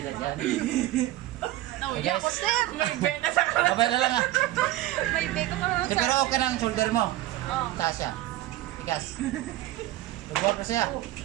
dyan. Nauya ko, sir. May bed na sa Babay na lang ha. May bed ko naman Eh, pero okay ng shoulder mo. Oh. Taas siya. Tigas. Lubuhan ko siya.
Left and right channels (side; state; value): left; quieter; 15.5 dB